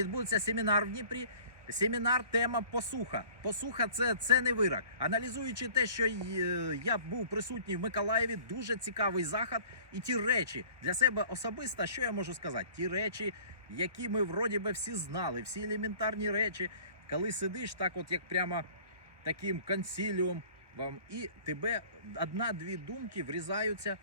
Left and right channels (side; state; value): left; late; 1.2 ms